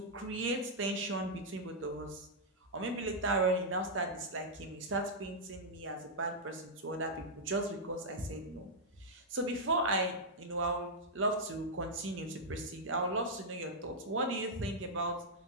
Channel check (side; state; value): both; normal; correlation -0.06